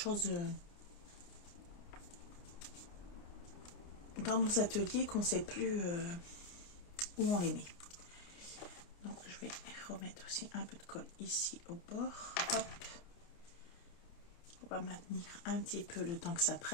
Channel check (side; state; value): right; late; 29 ms